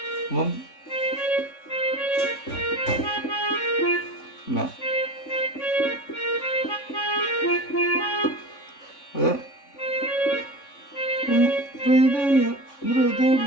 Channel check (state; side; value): late; right; 3.5 ms